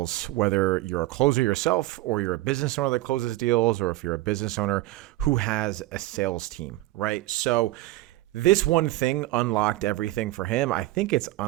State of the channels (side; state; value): left; quieter; 17.8 dB